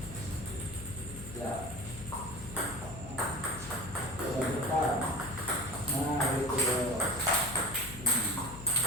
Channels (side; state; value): left; noise; hum, 12 dB below the sound